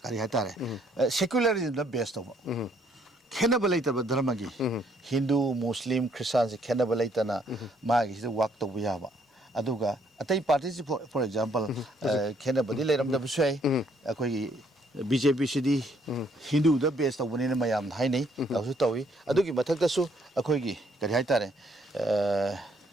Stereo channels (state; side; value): normal; both; correlation 0.68